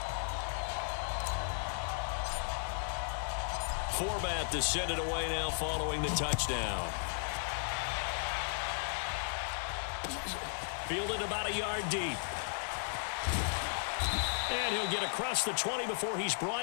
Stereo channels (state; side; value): silent; right; digital silence